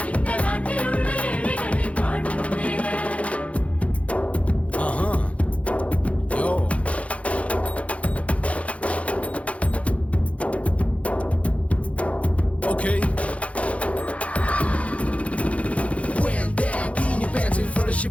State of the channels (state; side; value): late; right; 0.064 ms